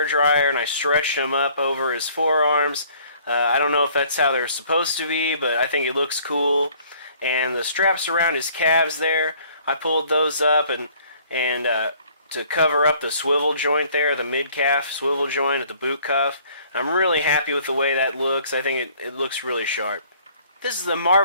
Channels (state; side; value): inverted; both; correlation -0.58